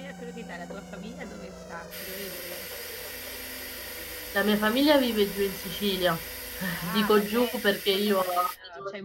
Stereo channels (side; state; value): both; identical; correlation 1.00